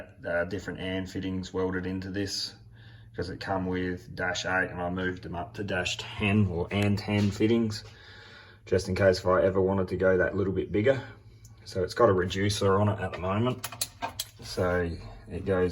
different AND fittings welded into this, because it come with -8 and I moved them up to -10 or AND 10 fittings, just in case if I ever wanted to go that little bit bigger. So it's got a reducer on it at the moment, so it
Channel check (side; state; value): both; identical; correlation 1.00